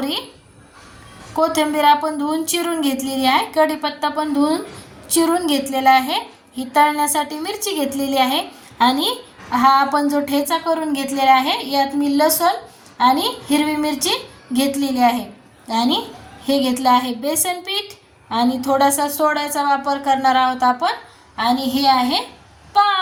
कोथिंबीर आपण धुवून चिरून घेतलेली आहे, कढीपत्ता पण धुवून चिरून घेतलेला आहे, ही तळण्यासाठी मिरची घेतलेली आहे आणि हा आपण जो ठेचा करून घेतलेला आहे यात मी लसूण आणि हिरवी मिरची घेतलेली आहे आणि हे घेतलं आहे बेसन पीठ आणि थोडासा सोड्याचा वापर करणार आहोत आपण आणि हे आहे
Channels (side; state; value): both; identical; correlation 1.00